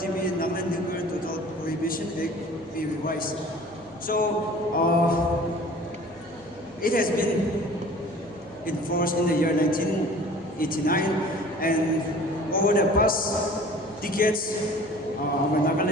Nagaland Nuclear Total Prohibition Act be revised? So it has been enforced in the year 1989, and over the past decades, our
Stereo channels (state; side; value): noise; right; hum, 27 dB below the sound